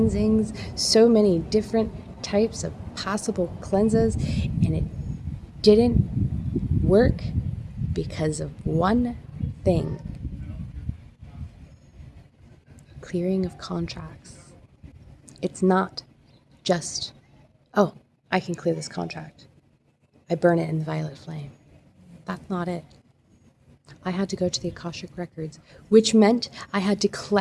so many different types of possible cleanses, and it didn't work because of one thing: clearing of contracts. It's not just, oh, I can clear this contract. I burn it in the violet flame. That's not it. I had to go to the Akashic Records, which meant I had to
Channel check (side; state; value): both; identical; correlation 1.00